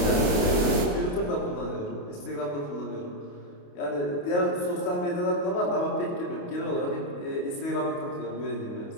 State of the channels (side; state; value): right; late; 28 ms